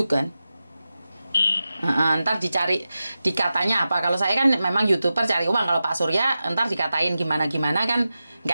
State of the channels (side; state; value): both; inverted; correlation -0.93